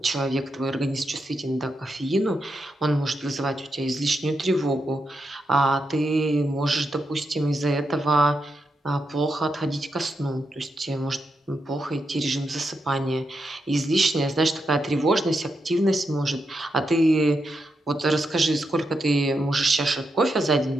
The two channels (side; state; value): both; normal; correlation 0.85